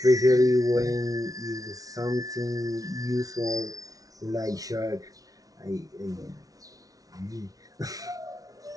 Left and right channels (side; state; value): left; late; 0.18 ms